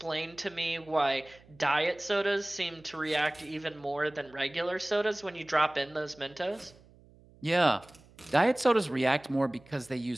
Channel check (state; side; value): noise; right; hum, 26 dB below the sound